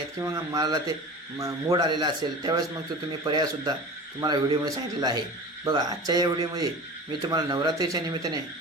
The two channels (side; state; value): both; normal; correlation 0.35